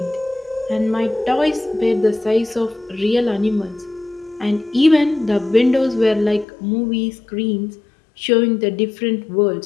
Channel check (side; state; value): right; drops out; at 6.5 s